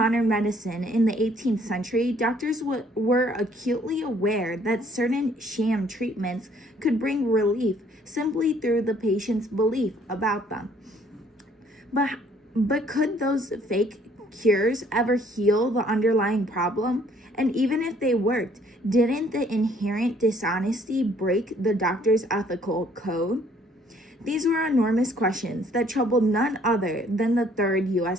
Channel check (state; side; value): normal; both; correlation 0.62